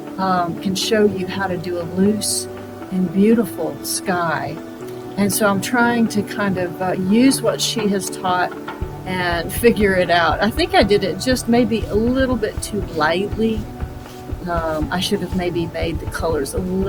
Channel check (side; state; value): both; identical; correlation 1.00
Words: can show you how to do a loose and beautiful sky. And so I'm trying to kind of use what she has taught and figure it out. I think I did it just maybe a little bit too lightly. I should have maybe made the colors a